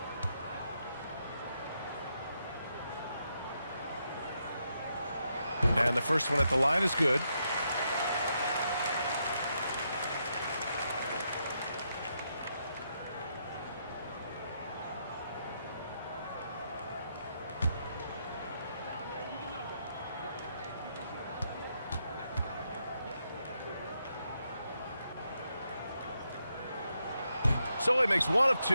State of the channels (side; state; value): both; inverted; correlation -0.80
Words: And the first one at the line is good. So he makes 1 of